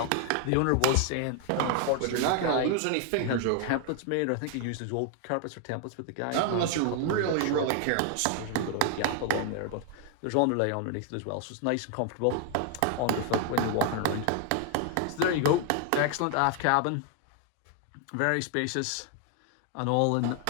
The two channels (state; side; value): different; both; correlation 0.00